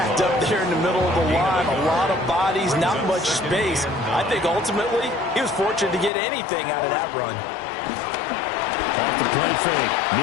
up there in the middle of the line. A lot of bodies, not much space. I think ultimately he was fortunate to get anything out of that run. Off the play fake,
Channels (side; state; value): right; drops out; at 6.1 s